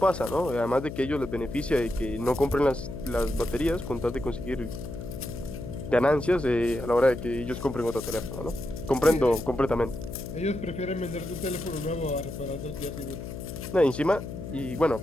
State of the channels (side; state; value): left; noise; hum, 8 dB below the sound